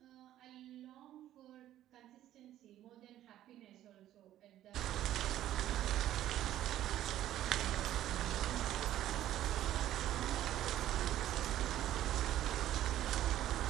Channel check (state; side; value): quieter; left; 12.8 dB